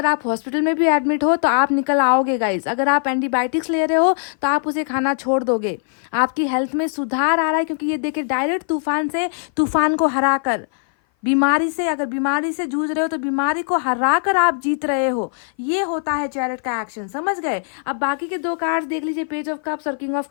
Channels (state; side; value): silent; right; 57 dB below the other